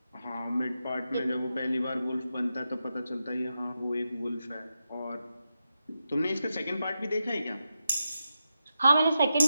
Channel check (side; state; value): both; inverted; correlation -0.88